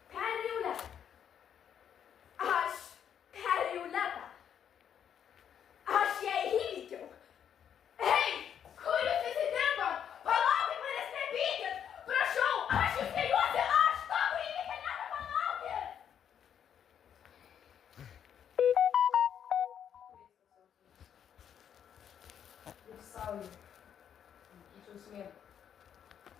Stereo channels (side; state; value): right; quieter; 8.8 dB